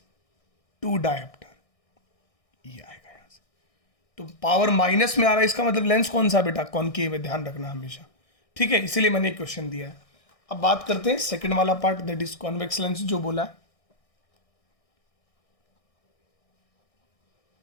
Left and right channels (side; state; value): right; late; 1.6 ms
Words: dioptre, ये आएगा यहां से। तो पावर माइनस में आ रहा है, इसका मतलब लेंस कौन सा बेटा, कॉनकेव है, ध्यान रखना हमेशा। ठीक है, इसीलिए मैंने क्वेश्चन दिया है। अब बात करते हैं सेकंड वाला part, that is convex lens जो बोला है।